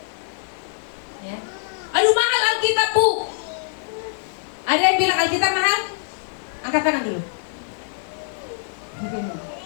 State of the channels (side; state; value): right; silent; digital silence